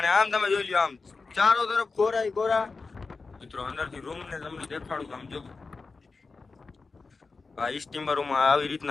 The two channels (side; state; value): right; quieter; 4.2 dB